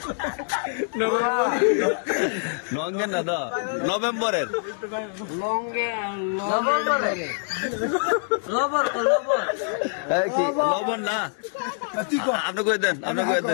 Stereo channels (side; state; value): right; silent; digital silence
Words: নঙ্গের না দা নভেম্বরের নভেম্বরে এই কি লবণ না আপনি কই দেন আপনি কই